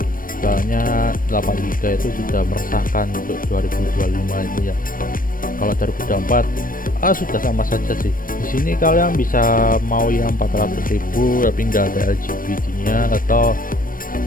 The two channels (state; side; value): late; right; 0.40 ms